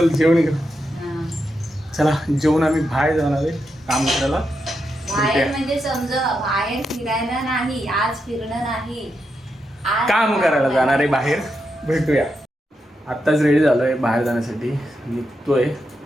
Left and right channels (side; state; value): both; normal; correlation 0.85